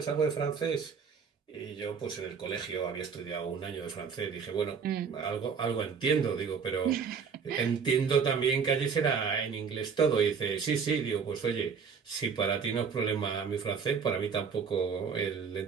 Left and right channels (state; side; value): quieter; left; 6.1 dB